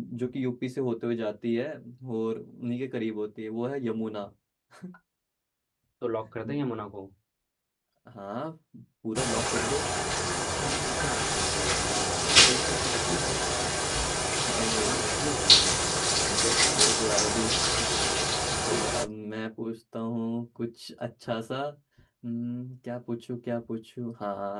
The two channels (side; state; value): both; identical; correlation 1.00